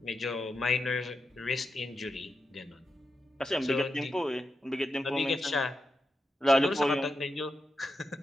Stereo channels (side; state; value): both; normal; correlation 0.87